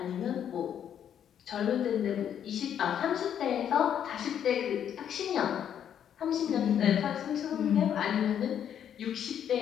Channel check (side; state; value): right; quieter; 9.3 dB